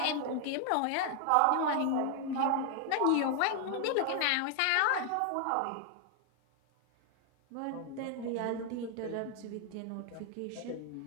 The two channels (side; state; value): both; different; correlation 0.00